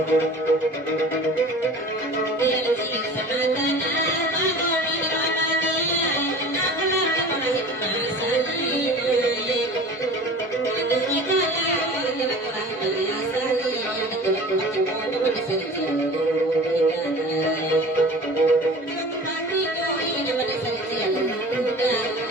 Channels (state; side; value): normal; both; correlation 0.40